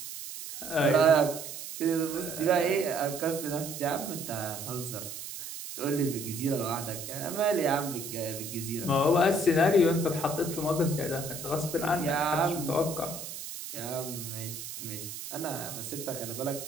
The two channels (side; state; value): right; noise; hiss, 9 dB below the sound